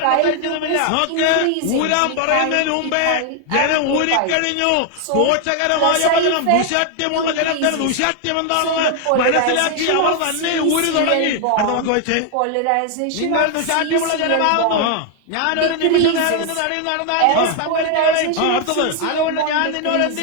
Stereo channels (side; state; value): both; different; correlation 0.00